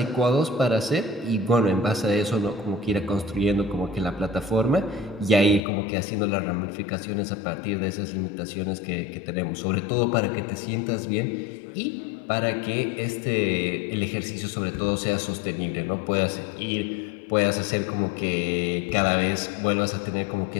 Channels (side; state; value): right; drops out; at 5.6 s